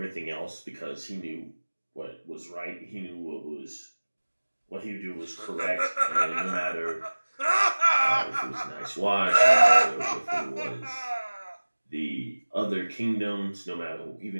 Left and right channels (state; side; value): inverted; both; correlation -1.00